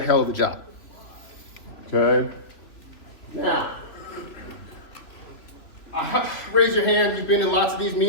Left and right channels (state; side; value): late; right; 3.2 ms